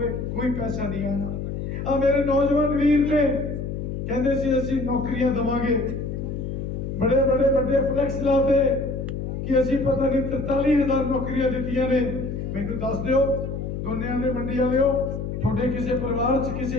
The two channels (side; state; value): left; noise; hum, 5 dB below the sound